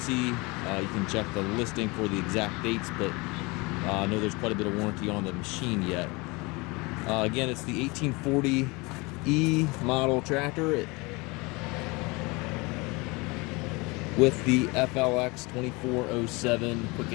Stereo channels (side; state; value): right; quieter; 25.9 dB